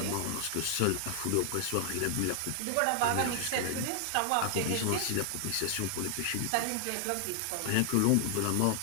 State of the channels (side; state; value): both; different; correlation 0.00